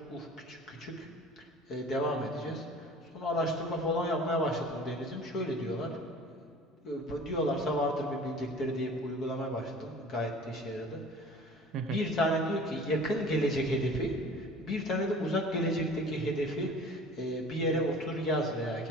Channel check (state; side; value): normal; both; correlation 0.44